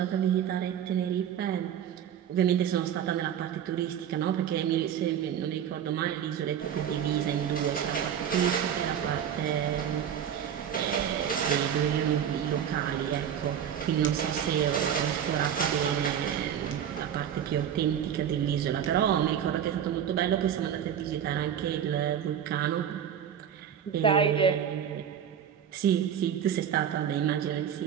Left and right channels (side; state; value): left; quieter; 9.1 dB